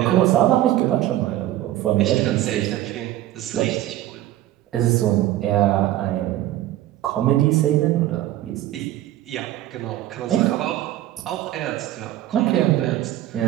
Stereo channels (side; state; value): left; quieter; 14.2 dB